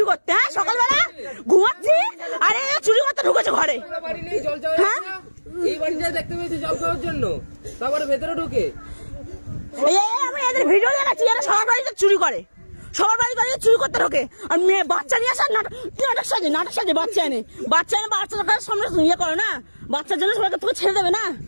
করতে। হ্যাঁ সকালবেলা ঘুমাচ্ছি আরে চুরি করতে ঢুকেছে ঘরে। হ্যাঁ এই বাড়িটা দেখতে পেয়েছি জল খাওয়ার জন্য, তারপরে ভেতরে ঢুকে আমি এদের ভিডিও দেখাচ্ছি, এরা সবার বাড়িতে চুরি করে, সবার বাড়িতে চুরি করতে ঢোকে। আর মেয়ে বাচ্চা নিয়ে আসা নাটক সাজে বাচ্চা এনে বাচ্চাদের সামনে ইয়ে করে না, বাচ্চার জন্য সবাইকে তোকে ছেড়ে দেবে না।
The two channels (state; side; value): inverted; both; correlation -1.00